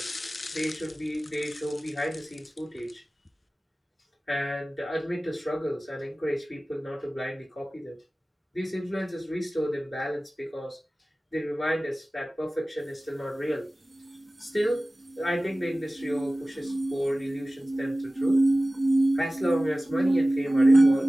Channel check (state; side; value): normal; both; correlation 0.97